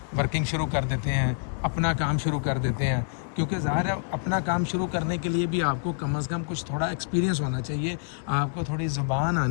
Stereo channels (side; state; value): right; silent; digital silence